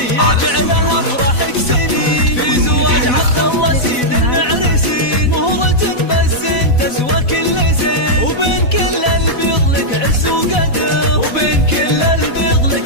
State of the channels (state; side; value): late; right; 4.1 ms